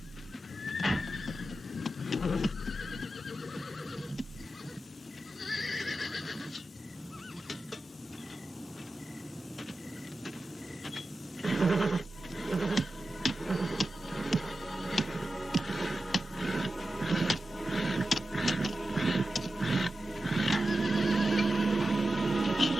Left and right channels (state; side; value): normal; both; correlation 0.92